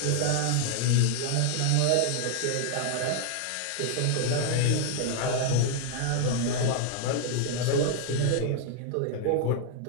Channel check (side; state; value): both; different; correlation 0.00